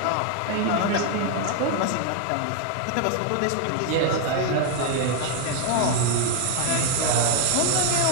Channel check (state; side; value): different; both; correlation 0.00